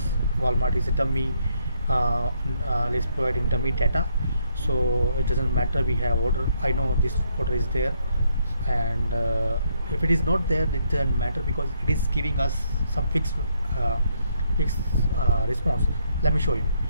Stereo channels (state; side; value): inverted; both; correlation -0.73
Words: Walmart is a dummy, is providing dummy data, so it doesn't matter we have order. I know this order is there, and if it is not there, it doesn't matter because it is giving us some fixed response. Let me show you.